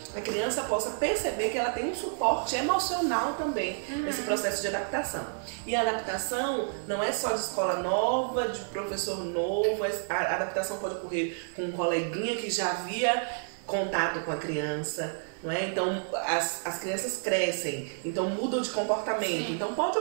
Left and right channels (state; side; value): silent; left; 58 dB below the other